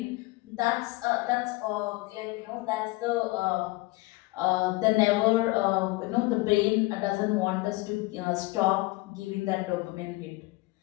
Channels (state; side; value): quieter; right; 21.8 dB